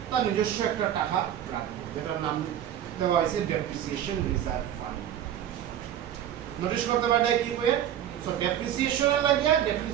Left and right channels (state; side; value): quieter; left; 10.6 dB